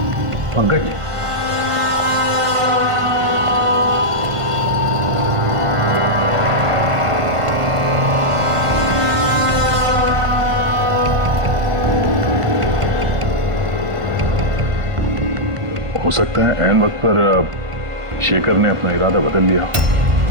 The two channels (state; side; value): late; left; 1.5 ms